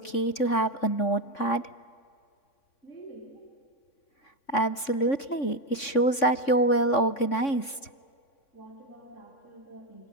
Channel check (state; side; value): late; right; 3.6 ms